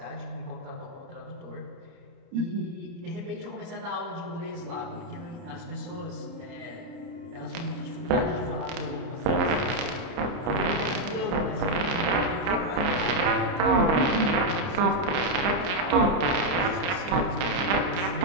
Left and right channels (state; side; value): late; left; 30 ms